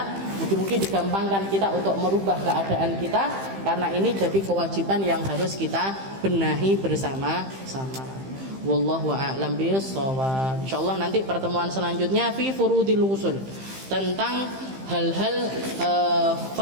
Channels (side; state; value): left; late; 15 ms